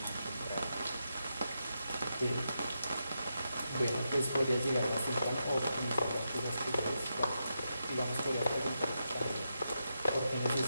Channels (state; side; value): inverted; both; correlation -0.85